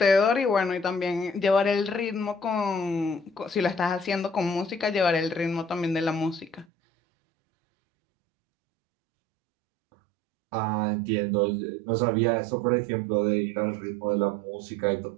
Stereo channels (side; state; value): left; drops out; at 6.7 s